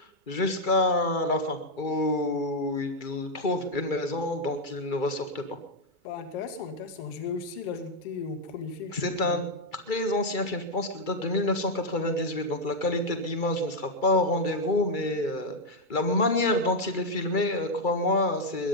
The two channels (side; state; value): right; late; 2.3 ms